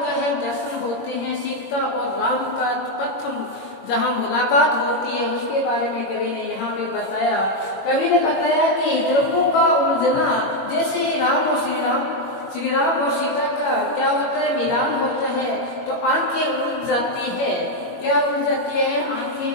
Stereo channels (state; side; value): late; right; 21 ms